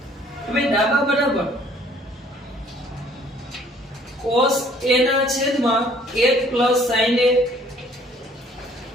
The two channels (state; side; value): normal; both; correlation 0.58